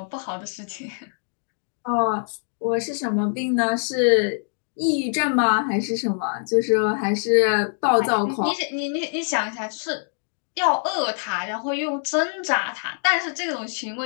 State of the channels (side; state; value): right; silent; 63 dB below the other